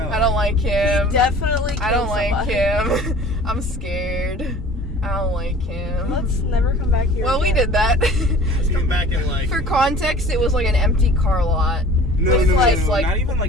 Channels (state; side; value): normal; both; correlation 0.45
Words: I don't like him. Definitely. I don't killed like somebody. him. I'm scared. I don't like him. Let's never come back here. Well, we again. did that. Let's come back in like. For context, it was like an empty car lot. No, With no, like, no, like not even